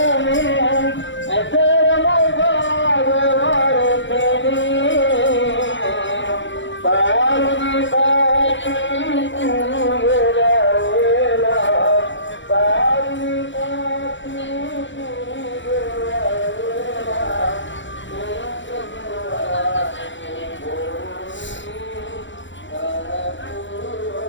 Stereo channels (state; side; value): late; right; 0.54 ms